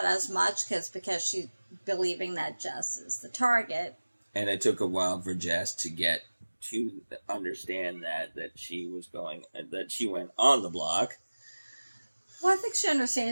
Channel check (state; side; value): inverted; both; correlation -1.00